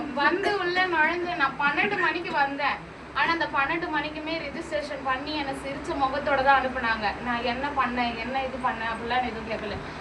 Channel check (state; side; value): identical; both; correlation 1.00